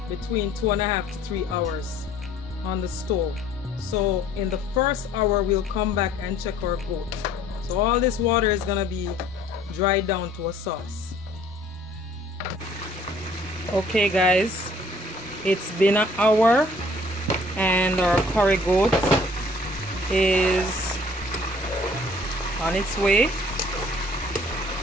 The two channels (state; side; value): normal; both; correlation 0.56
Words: between 2.5 to 3 hours on the stove. So in the first hour we'll come back and check our goat. So all this water is gonna be dried down to a sauce. Okay guys, it's been an hour and our curry goat is on its way.